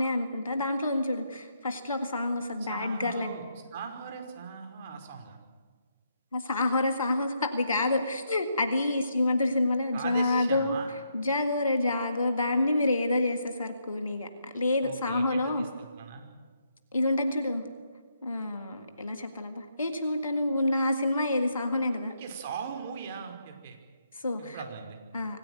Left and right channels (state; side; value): inverted; both; correlation -0.77